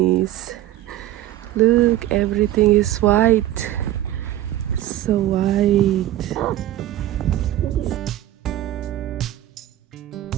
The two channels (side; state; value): left; quieter; 13.7 dB